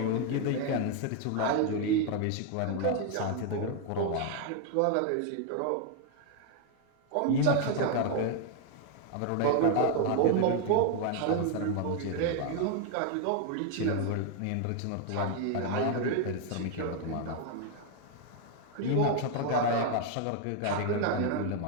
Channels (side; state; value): both; different; correlation 0.00